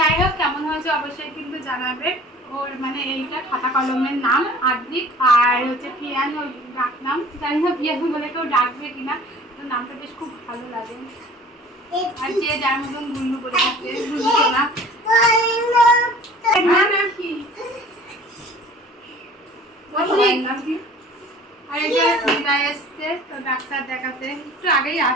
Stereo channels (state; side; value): normal; both; correlation 0.47